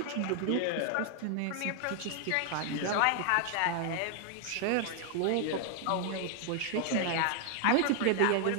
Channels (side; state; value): both; different; correlation 0.00